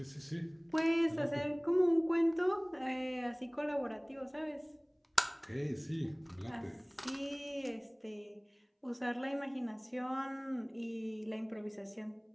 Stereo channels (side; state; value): both; identical; correlation 1.00